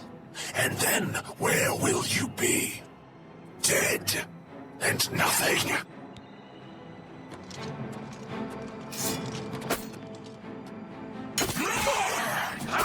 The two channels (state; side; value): identical; both; correlation 1.00